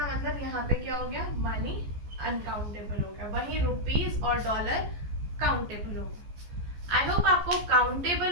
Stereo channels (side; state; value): left; late; 14 ms